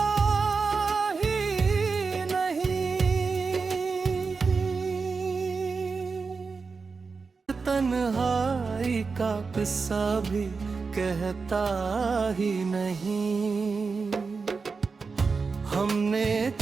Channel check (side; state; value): left; quieter; 4.7 dB